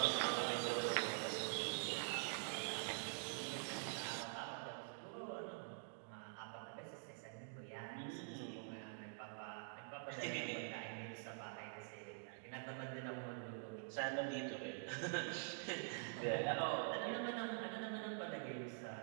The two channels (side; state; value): left; silent; digital silence